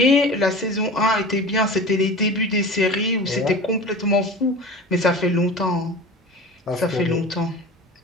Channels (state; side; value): normal; both; correlation 0.35